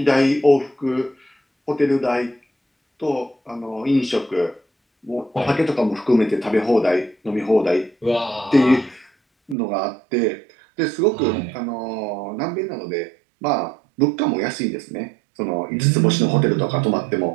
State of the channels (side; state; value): left; drops out; at 9.6 s